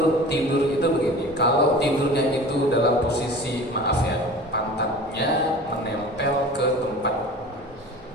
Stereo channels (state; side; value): normal; both; correlation 0.39